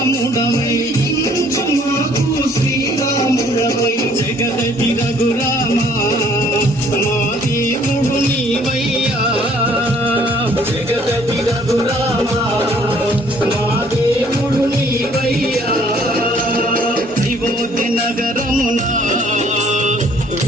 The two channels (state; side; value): normal; both; correlation 0.60